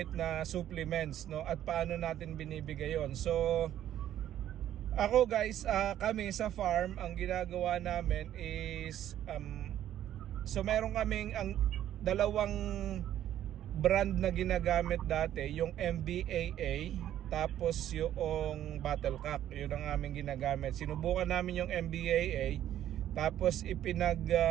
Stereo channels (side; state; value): left; quieter; 11.7 dB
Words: na supplements, no, at paano natin binibigay yon. So ako guys, kami sa farm, ang ginagawa namin is so meron kaming ang dalawang brand na ginagamit dati, yung MBAA tapos yung Battlecock. Yun ang aming ginagamit. Sinubukan namin yung MBAA, tapos